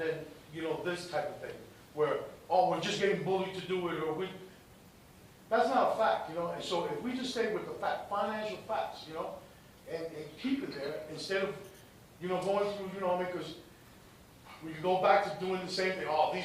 this type of thing, where, we're just getting bullied to do it, or that's not a fact, and so if we just stay with the financial facts, and keep it there, instead of, going through, because we can go back to doing the same thing,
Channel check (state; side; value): identical; both; correlation 1.00